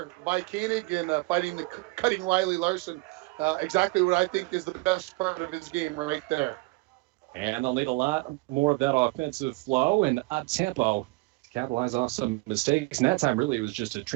by Koenig and cutting Riley Larson. Exactly what I think is the best part of his game right there. And they'll need a lot more of that offensive flow and up-tempo to capitalize off some mistakes. And that time, really, it was just a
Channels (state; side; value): quieter; left; 24.3 dB